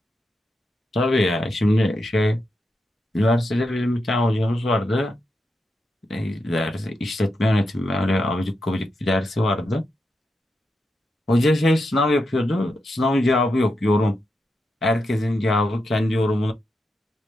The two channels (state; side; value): normal; both; correlation 0.86